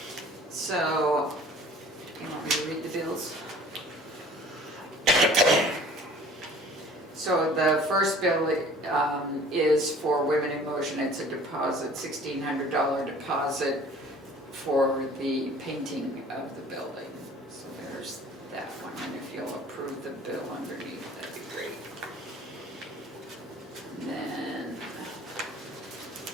So, you want me to read the bills? So the first bill is for Women in Motion. It's a deposit, $1,600 deposit for the painting of the building. So there's that one, and if you'll approve the bill underneath, that'd be great. And then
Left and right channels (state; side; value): normal; both; correlation 0.49